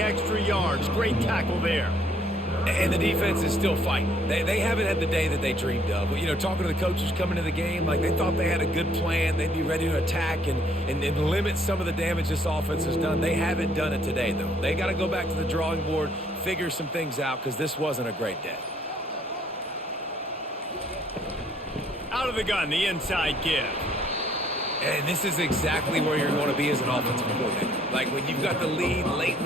yards. Great tackle there. And the defense is still fighting. They haven't had the day that they dreamed of. You know, talking to the coaches coming to the game, like they thought they had a good plan. They'd be ready to attack and limit some of the damage this offense has done. They haven't done it today, though. They got to go back to the drawing board, figure some things out, because this wasn't a great day. Out of the gun, the inside give. And this is exactly where you're going to be as an offensive coordinator. Like when you've got the lead late in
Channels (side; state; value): both; normal; correlation 0.64